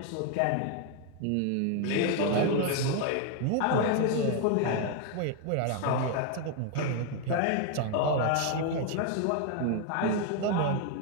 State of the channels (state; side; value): different; both; correlation 0.01